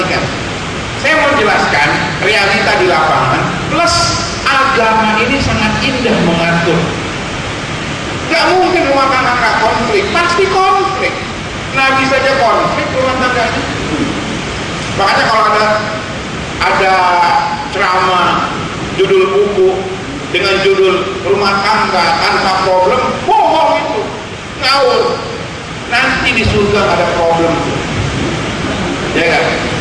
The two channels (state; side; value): identical; both; correlation 1.00